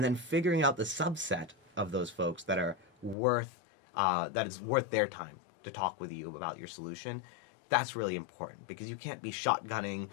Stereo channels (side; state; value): right; drops out; at 3.2 s